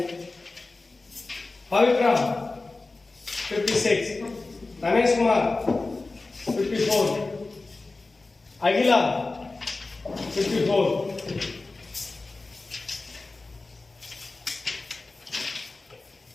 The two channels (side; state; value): right; quieter; 3.5 dB